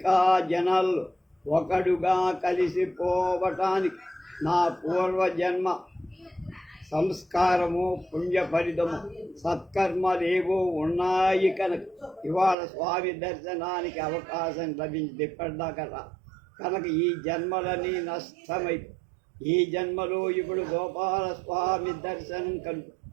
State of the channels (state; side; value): drops out; left; at 12.6 s